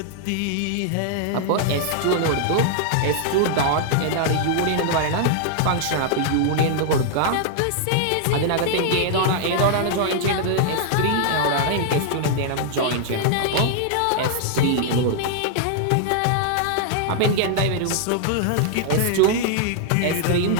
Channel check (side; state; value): both; different; correlation -0.01